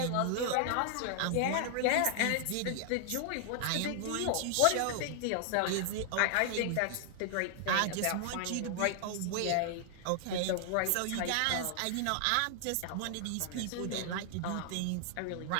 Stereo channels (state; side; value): different; both; correlation 0.00